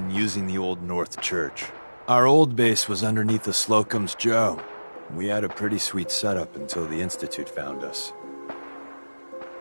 using the Old North Church. Our old base was underneath the Slocum's Joe. We had a pretty sweet setup until the Institute found us.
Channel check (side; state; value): both; inverted; correlation -1.00